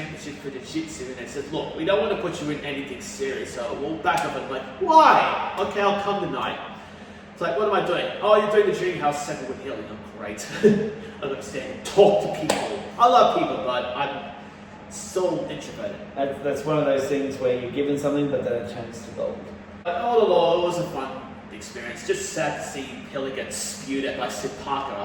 for the Jiu-Jitsu, and they said, look, we don't want to put you in anything serious, so we'll back up. And I'm like, why? Okay, I'll come tonight. It's like, what am I doing? Oh, you're doing the Dream House segment with Hilly. I'm great. I understand. Talk to people. I love people, but I'm so introverted. That's one of those things where you're given something, but then it turns to gold. But all in all, it was a fun experience. Just sad to see Hilly get spewed at by Sid Parker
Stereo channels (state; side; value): identical; both; correlation 1.00